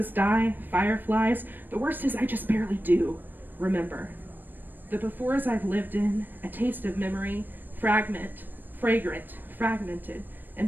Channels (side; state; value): left; late; 0.091 ms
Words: Di, fireflies. The worst is I just barely do remember. The befores I've lived in, a taste of memory, fragrant, fragmented,